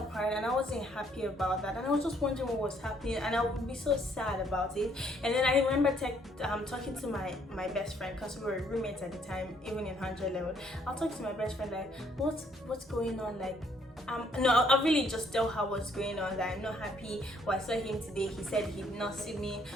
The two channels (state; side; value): normal; both; correlation 0.67